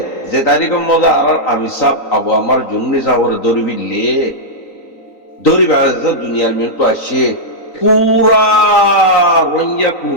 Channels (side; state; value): right; late; 3.9 ms